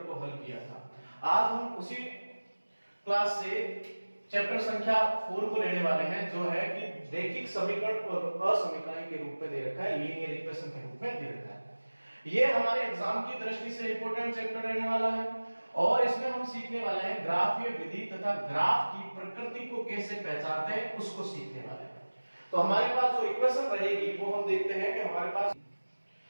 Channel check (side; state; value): both; inverted; correlation -1.00